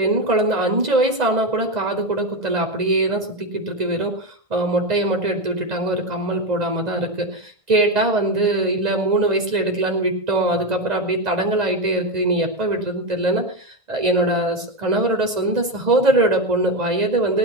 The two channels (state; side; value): late; left; 1.5 ms